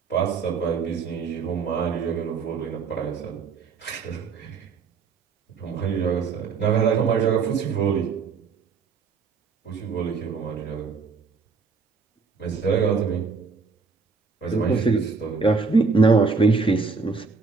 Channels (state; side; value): quieter; left; 4.8 dB